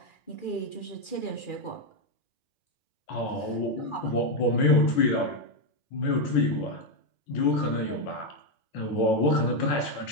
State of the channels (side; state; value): right; late; 2.4 ms